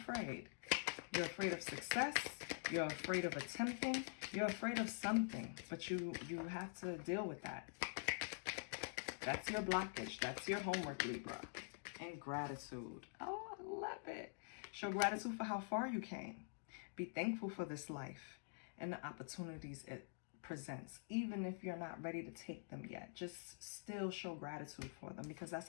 You're afraid of success. You're afraid of attempting. You're afraid of something, but you have to deal with that. That's your blockage. That's your homework, Libra. And gratitude. Oh, I love it. Show gratitude for how far you came. Be thankful for this life and the opportunities it presents, even if you're not ready to take them yet. Just still show gratitude for them, because that's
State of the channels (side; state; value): right; silent; digital silence